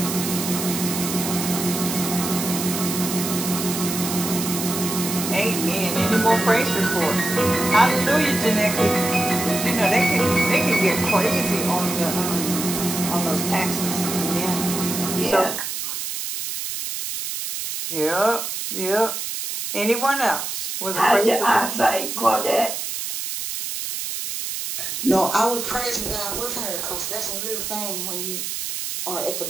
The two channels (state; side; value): noise; right; hiss, 4 dB below the sound